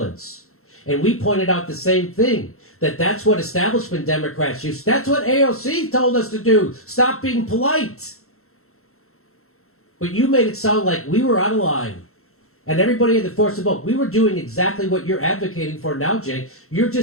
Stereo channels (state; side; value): late; right; 0.63 ms